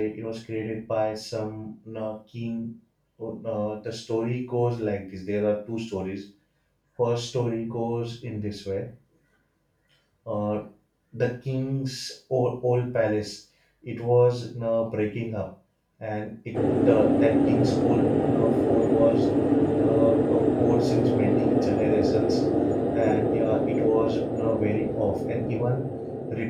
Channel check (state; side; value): identical; both; correlation 1.00